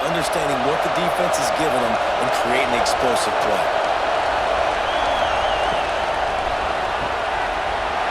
understanding what the defense is giving them and creating the explosive play.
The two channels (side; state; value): both; identical; correlation 1.00